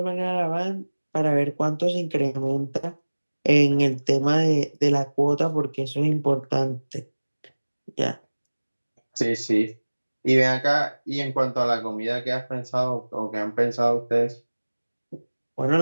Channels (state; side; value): inverted; both; correlation -1.00